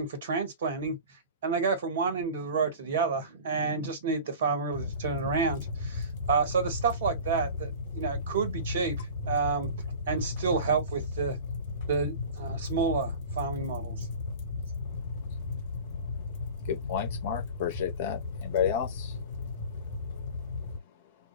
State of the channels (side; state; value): both; inverted; correlation -0.38